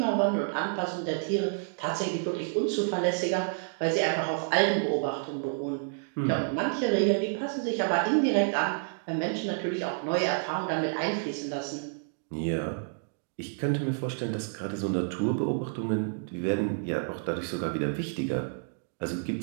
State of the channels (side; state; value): left; silent; digital silence